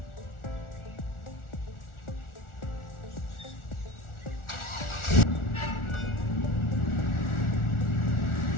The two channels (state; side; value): late; right; 1.4 ms